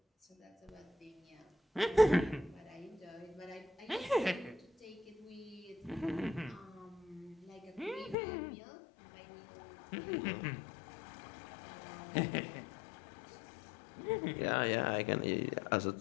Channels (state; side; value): drops out; right; at 8.2 s